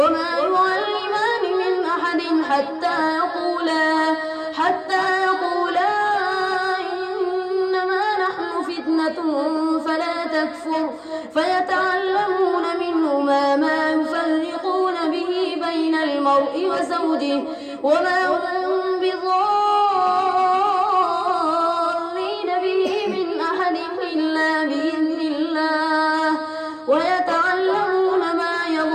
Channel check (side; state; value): both; identical; correlation 1.00